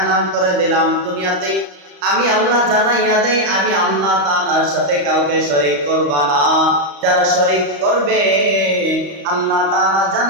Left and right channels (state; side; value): late; left; 34 ms